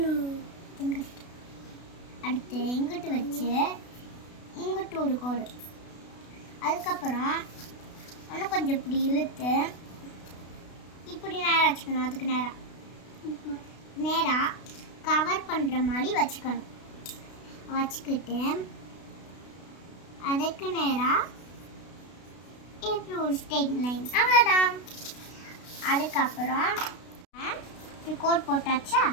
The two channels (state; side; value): late; right; 32 ms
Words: அடுத்து இங்கிட்டு வச்சு இங்கிட்டு ஒரு கோடு. அதுக்கப்புறம் இன்னும் கொஞ்சம் இப்படி இழுத்து இப்படி நேராக வச்சுக்கணும். அதுக்கு நேராக கவர் பண்ணுற மாதிரி வச்சுக்கணும். வச்சுக்கிட்டு அதுக்கு நேராக இப்படி ஒரு ஸ்ட்ரெயிட் லைன், அவ்வளோதான். அதுக்கப்புறம் இப்படி கோட் போட்டாச்சா?